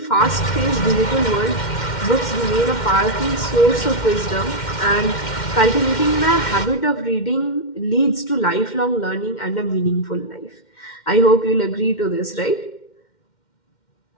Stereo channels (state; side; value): late; right; 2.1 ms